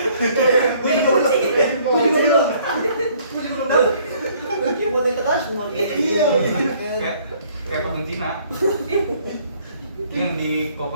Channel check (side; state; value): both; inverted; correlation -0.61